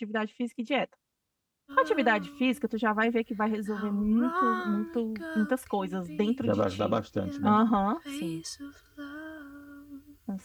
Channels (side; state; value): both; identical; correlation 1.00